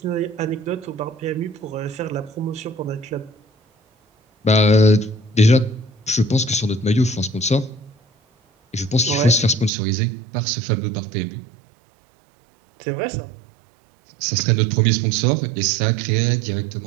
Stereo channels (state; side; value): drops out; left; at 9.7 s